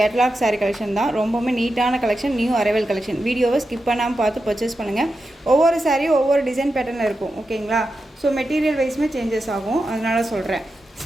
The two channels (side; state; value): both; normal; correlation 0.89